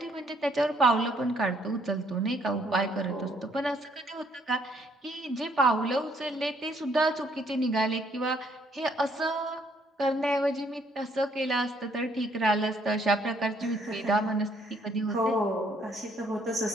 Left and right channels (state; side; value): normal; both; correlation 0.67